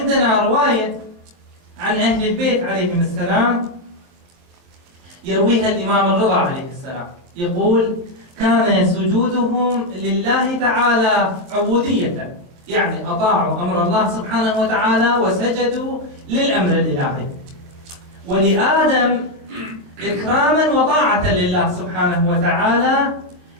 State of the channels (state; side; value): late; left; 23 ms